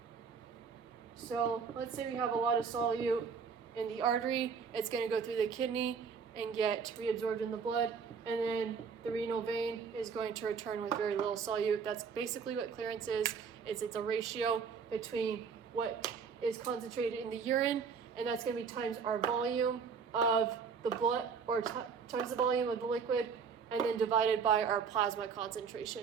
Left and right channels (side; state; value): left; quieter; 6.0 dB